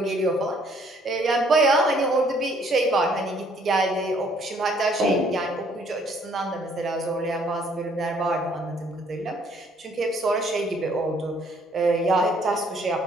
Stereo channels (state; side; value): normal; both; correlation 0.63